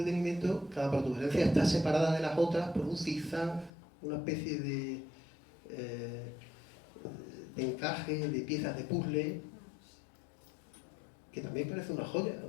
cada protuberancia está separada de las otras por un zigzag, una especie de encaje, de piezas de puzzle, que también parece una joya,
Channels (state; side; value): drops out; right; at 3.7 s